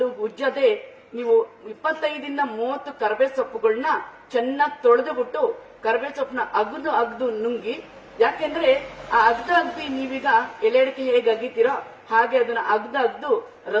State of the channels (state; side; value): identical; both; correlation 1.00